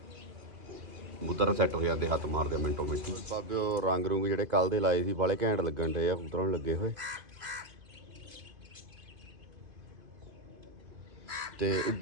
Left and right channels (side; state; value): left; late; 2.5 ms